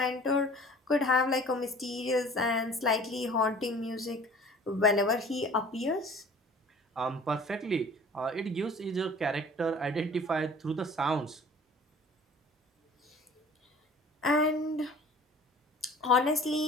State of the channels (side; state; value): both; normal; correlation 0.47